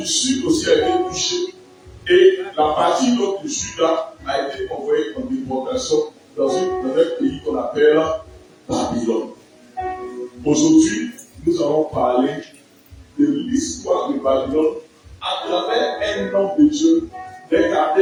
du Sud aussi a été touché. Et la partie nord du Juda a été envoyée en déportation dans un pays qu'on appelle Babylone. Aujourd'hui, nous allons parler de l'histoire de Babylone à travers un homme de Dieu, d'un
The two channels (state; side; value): identical; both; correlation 1.00